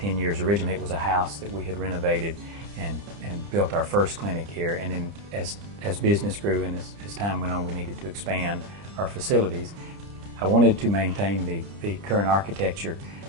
years. Originally it was a house that we had renovated and built our first clinic here, and then as business grew and as time went on, we needed to expand our facilities. I wanted to maintain the current architecture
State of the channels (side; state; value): left; late; 30 ms